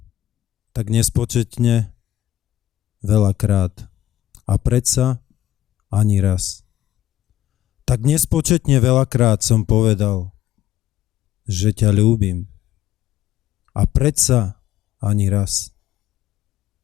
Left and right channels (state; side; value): quieter; right; 13.0 dB